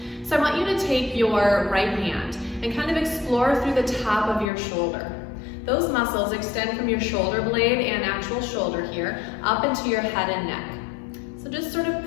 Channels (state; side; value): drops out; right; at 4.5 s